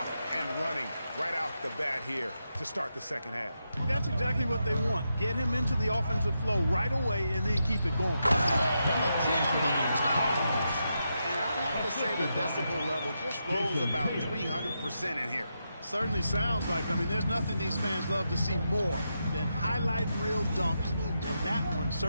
and running right off the bat here to start the second half. That's exactly what they want. Get him into the offensive flow right away and then keep it going. And the jam by Towns. And I'd have to say the decibel level just rose about 300% in here. Certainly sounds like it. I mean, there's nothing these fans love to see more than highlight reel dunks, and that one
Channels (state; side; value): inverted; both; correlation -0.85